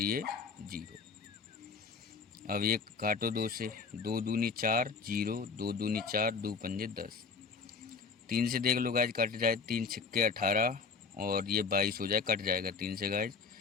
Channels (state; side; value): quieter; right; 5.1 dB